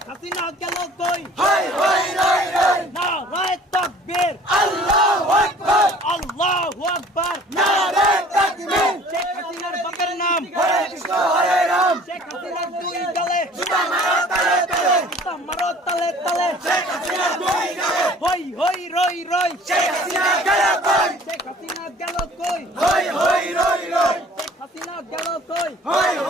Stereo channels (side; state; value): both; normal; correlation 0.50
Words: হাসিনা গেল কই হাই হাই রাই রাই নারায়ে তাকবীর আল্লাহু আকবার আল্লাহু আকবার নারে তাকবীর শেখ হাসিনার বাপের নাম হরে কৃষ্ণ হরে রাম শেখ হাসিনার দুই গালে জুতা মারো তালে তালে জুতা মারো তালে তালে শেখ হাসিনা দুই গালে হই হই রই রই শেখ হাসিনা গেল কই শেখ হাসিনা গেল কই হই হই রই রই শেখ হাসিনা গেল কই হই